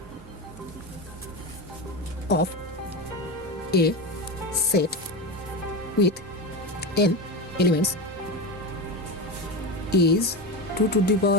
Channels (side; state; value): both; normal; correlation 0.20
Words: of a set with n elements is 2 to the